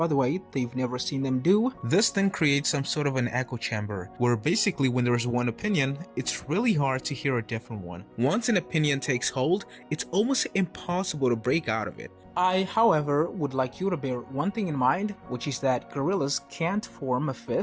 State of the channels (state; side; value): identical; both; correlation 1.00